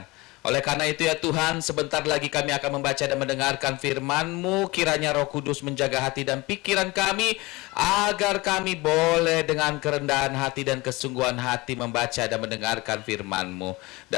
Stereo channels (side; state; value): right; quieter; 21.8 dB